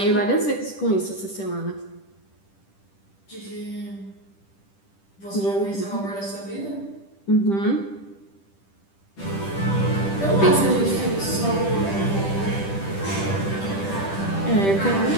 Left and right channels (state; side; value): late; right; 10 ms